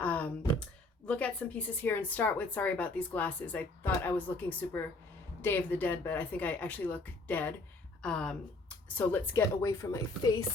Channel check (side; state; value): right; quieter; 3.0 dB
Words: look at some pieces here and start with, sorry about these glasses. I thought I was looking super Day of the Dead, but I think I actually look dead. So let's get away from my